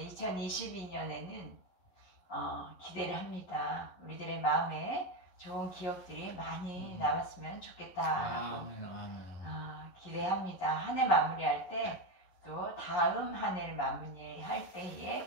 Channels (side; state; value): right; late; 11 ms